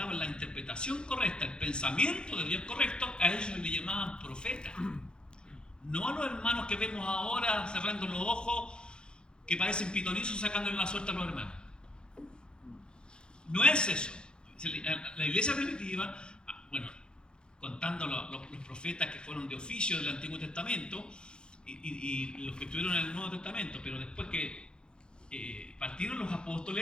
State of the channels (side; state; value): right; late; 0.049 ms